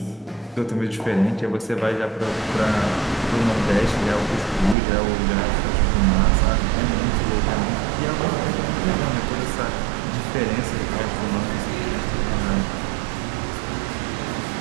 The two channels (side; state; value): left; drops out; at 4.8 s